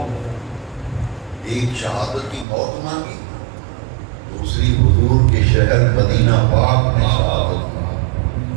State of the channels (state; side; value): drops out; left; at 2.5 s